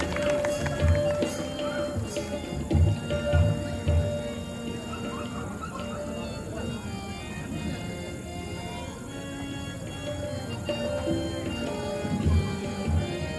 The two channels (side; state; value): both; identical; correlation 1.00